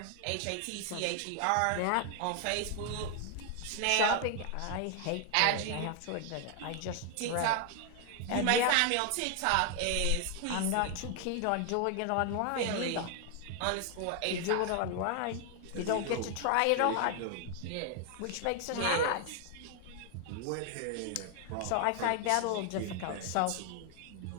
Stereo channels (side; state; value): both; different; correlation 0.00